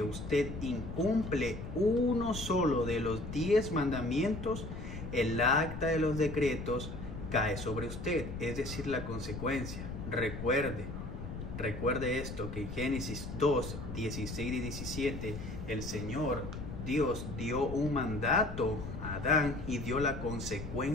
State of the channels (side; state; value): left; noise; rumble, 8 dB below the sound